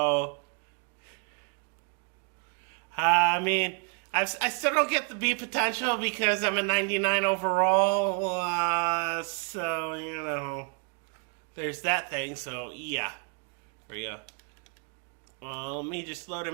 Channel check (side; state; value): left; quieter; 37.9 dB